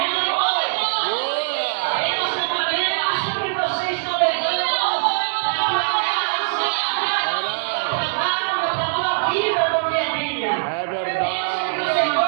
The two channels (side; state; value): left; silent; digital silence